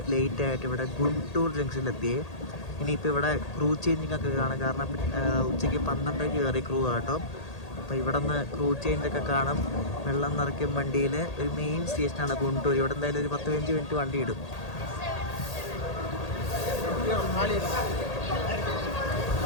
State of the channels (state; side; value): late; right; 1.8 ms